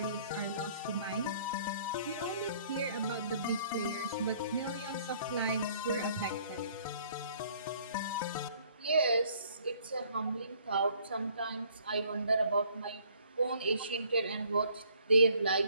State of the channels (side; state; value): both; inverted; correlation -0.60